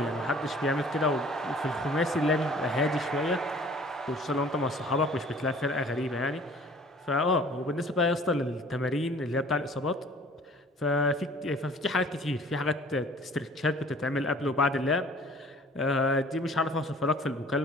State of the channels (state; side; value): normal; both; correlation 0.51